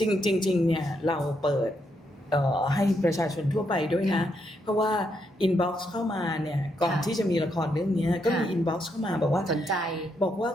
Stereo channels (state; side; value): normal; both; correlation 0.78